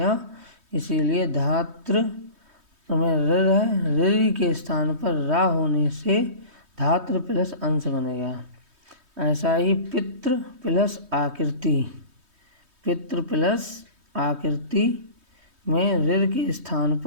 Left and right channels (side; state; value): left; late; 3.2 ms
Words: इसीलिए धात्र में ऋर है, ऋ के स्थान पर रा होने से धात्र प्लस अंश बनेगा। ऐसा ही पितृ प्लस आकृति, पितृ प्लस आकृति में ऋर के स्थान